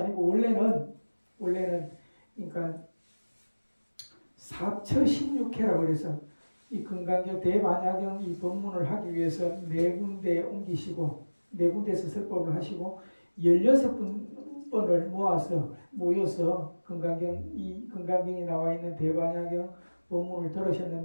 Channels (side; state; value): both; inverted; correlation -1.00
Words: 원래는 그러니까 4처16회라고 그래서 이 건강경 대반야경 이 법문을 하기 위해서 4군데에 옮기시고 4군데에서 설법을 하시고 16번을 모여서 이 건강경이 나와 있는 대반야경 법문을